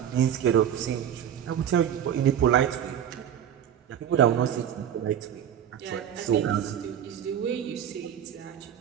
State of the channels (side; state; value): left; quieter; 9.6 dB